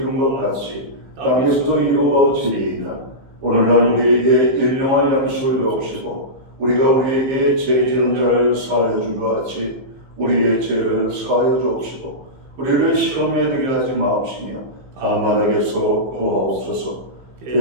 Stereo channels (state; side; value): late; left; 15 ms